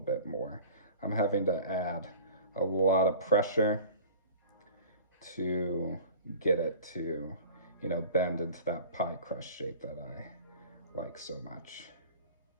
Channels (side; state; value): both; inverted; correlation -0.41